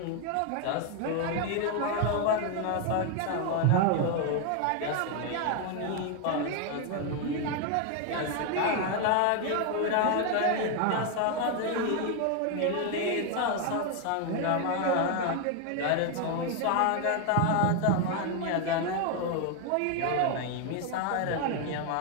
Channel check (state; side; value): different; both; correlation 0.01